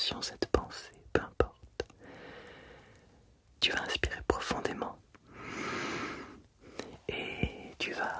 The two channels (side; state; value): both; identical; correlation 1.00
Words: cette pensée, peu importe, tu vas inspirer profondément et tu